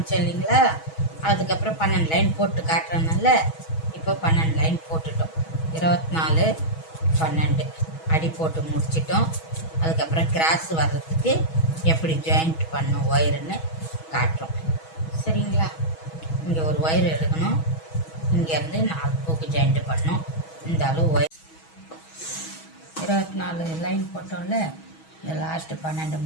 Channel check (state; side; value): late; right; 6.2 ms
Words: இல்லைங்களா, அதுக்கப்புறம் 12 லைன் போட்டு காட்டுறதுனால இப்போ 12 லைன் போட்டுட்டோம். 24 12 அடி போட்டு முடிச்சிட்டோம். அதுக்கப்புறம் கிராஸ் வர்றதுக்கு எப்படி ஜாயிண்ட் பண்ணும் ஒயருன்னு காட்டுறோம். சரிங்களா, இங்கே ஒரு ஒயர் எடுக்கணும், இங்கேருந்து 4 பூக்கு ஜாயிண்ட் பண்ணோம். இந்த அளவு ஒயர் 24 லைன் போட்டோம்ல, இந்த லாஸ்ட்டு 12